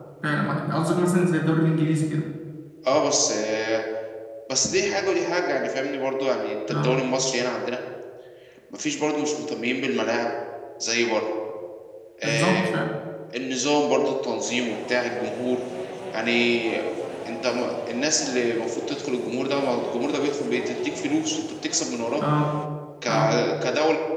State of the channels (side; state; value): both; identical; correlation 1.00